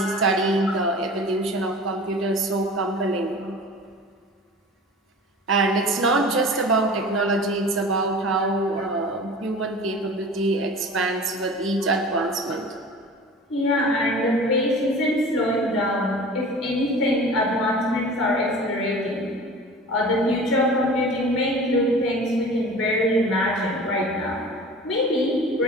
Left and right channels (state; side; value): normal; both; correlation 0.39